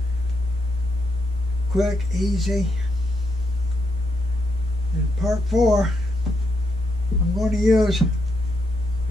Quick, easy. In part 4, I'm going to use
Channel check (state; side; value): normal; both; correlation 0.80